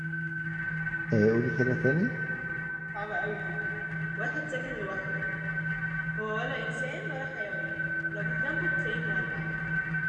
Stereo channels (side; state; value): both; identical; correlation 1.00